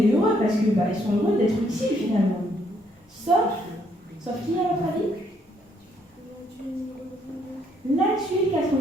heureux parce que ils sont heureux d'être utiles finalement. Sauf qui à votre avis? La tuile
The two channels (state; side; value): normal; both; correlation 0.70